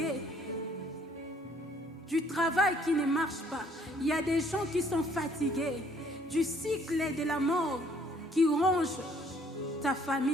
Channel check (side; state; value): both; normal; correlation 0.62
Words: du travail qui ne marche pas. Il y a des gens qui sont fatigués du cycle de la mort qui ronge ta